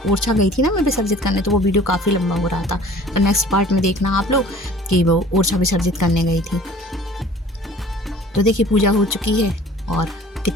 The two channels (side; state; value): both; normal; correlation 0.48